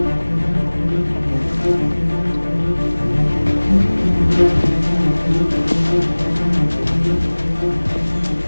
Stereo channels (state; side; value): inverted; both; correlation -1.00